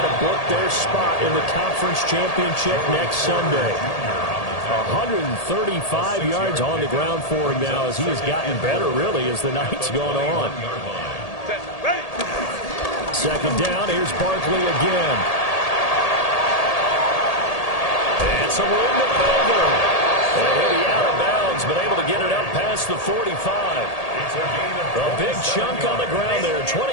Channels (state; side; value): late; right; 1.8 ms